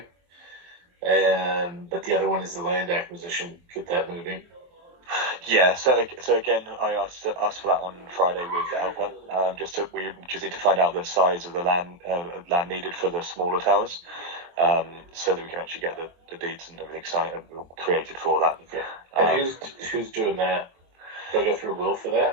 But the other one is the land acquisition. Get that moving. Yeah, so again, I asked for that on Friday with Alpha. We just need to find out the size of the land needed for the smaller towers, so that we can actually get the deeds and everything signed and created for that. And who's doing that? Do I go through Will for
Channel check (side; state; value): left; late; 23 ms